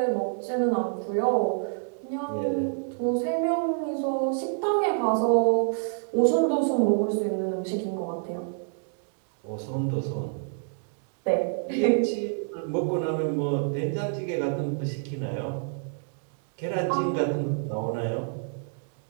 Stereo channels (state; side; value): silent; left; 60 dB below the other